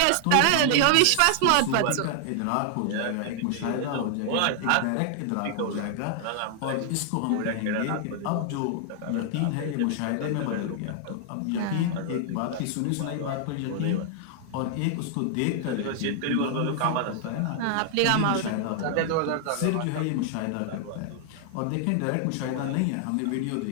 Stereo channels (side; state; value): both; different; correlation 0.00